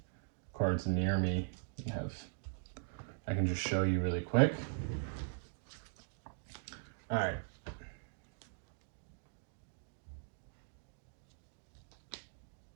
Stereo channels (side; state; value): left; silent; digital silence